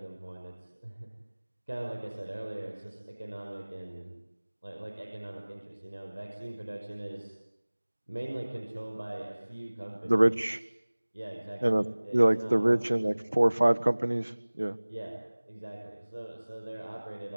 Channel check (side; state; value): both; inverted; correlation -1.00